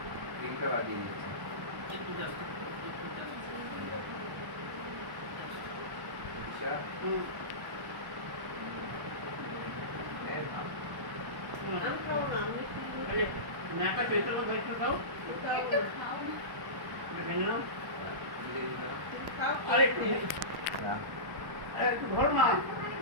তিনটা বাজিয়ে দিচ্ছি। আচ্ছা আরে নাকা চৈত্র মধ্যে একটু খাও একটু খাও না ভেঙে নাও আরে একটু ধরো না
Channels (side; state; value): left; late; 1.1 ms